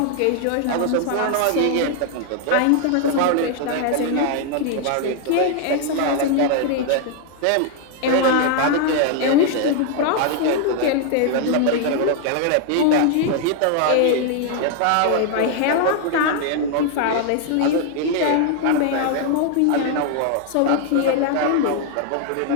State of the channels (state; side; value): different; both; correlation 0.00